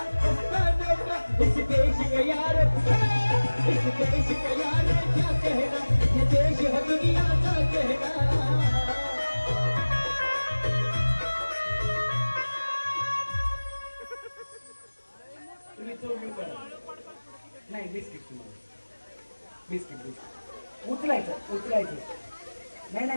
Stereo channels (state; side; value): inverted; both; correlation -1.00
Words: उस्तानों का. इस देश के यार, इस देश के यार क्या कहना. ये देश है दुनिया का कहना. तुम्ही चौकी करा. नाही बिस्किट तुम्हाला बिस्किट उचलायचं. नाही